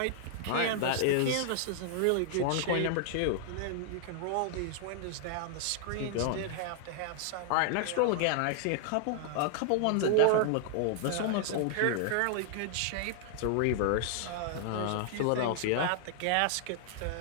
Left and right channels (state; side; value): different; both; correlation -0.01